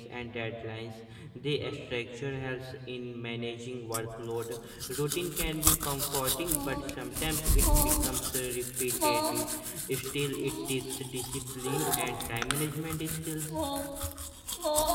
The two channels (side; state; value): both; identical; correlation 1.00